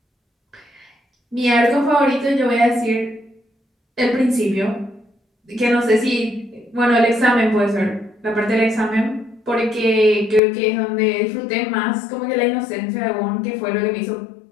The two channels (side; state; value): right; drops out; at 10.4 s